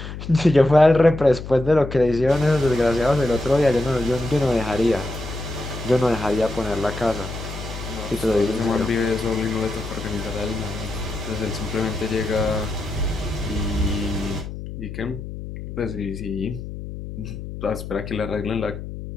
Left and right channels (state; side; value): noise; left; hum, 9 dB below the sound